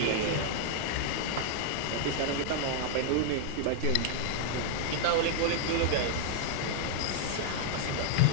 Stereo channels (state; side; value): different; both; correlation -0.01